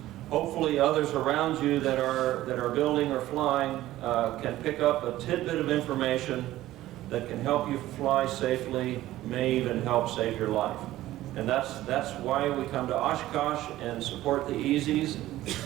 hopefully others around you that are building or flying can pick up a tidbit of information that can help you fly safely, may even help save your life. And that's why we come to Oshkosh and support the Easies.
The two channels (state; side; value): quieter; left; 15.2 dB